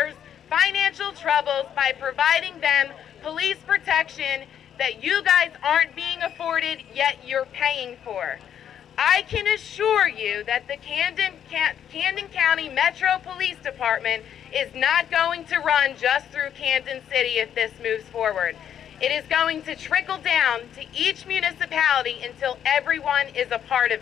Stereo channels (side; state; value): right; quieter; 9.4 dB